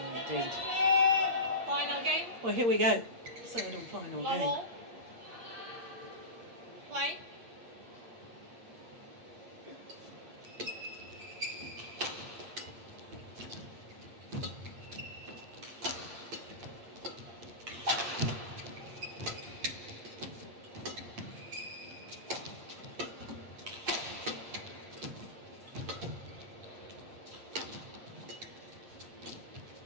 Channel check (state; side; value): late; left; 8.6 ms